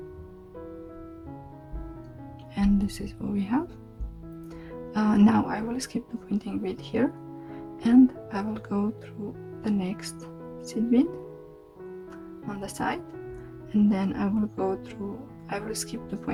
and this is what we have. Now I will skip the pointing bead here, and I will go through the next seed bead on the side, and then I will go through I will skip the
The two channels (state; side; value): identical; both; correlation 1.00